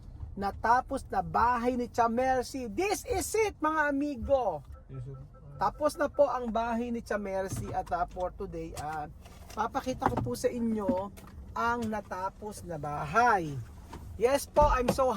natapos na bahay ni Chamercy. This is it, mga amigo. Tapos na po ang bahay ni Chamercy at for today papakita ko po sa inyo ang natapos na bahay. Yes po, I'm so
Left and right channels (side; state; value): both; identical; correlation 1.00